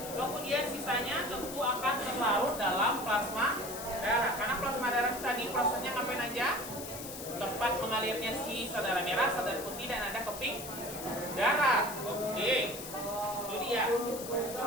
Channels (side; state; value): left; noise; hiss, 10 dB below the sound